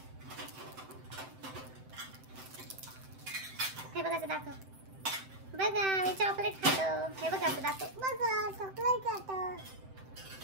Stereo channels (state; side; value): late; left; 7.8 ms